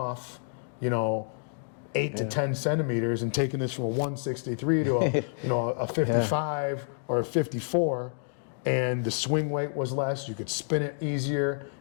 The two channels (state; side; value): silent; right; digital silence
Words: 8 to 10 centimeters and taking this from a 163 to a 55 or a 54, and the swing weight was less. You could spin it easier.